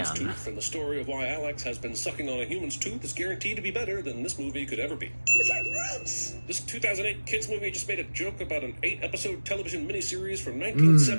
again. tooth, and the story of why Alex has been sucking on a human's tooth is guaranteed to be better than this movie could ever be. It's like roots. This 2008 kids movie just made a joke about an 8-episode television miniseries from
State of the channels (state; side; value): inverted; both; correlation -1.00